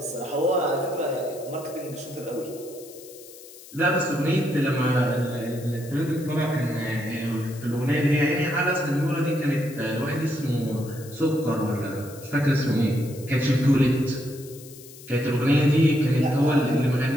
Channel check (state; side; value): noise; left; hiss, 19 dB below the sound